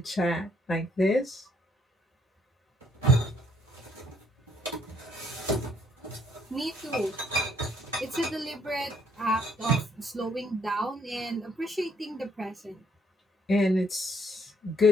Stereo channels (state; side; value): normal; both; correlation 0.67